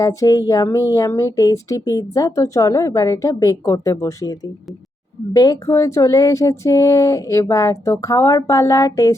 গেছে, ইয়ামি ইয়ামি টেস্টি পিৎজা। তো চলো এবার এটা বেক করতে বসিয়ে দিই। বেক হয়ে চলে এসেছে, এবার তো খাওয়ার পালা।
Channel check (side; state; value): both; normal; correlation 0.82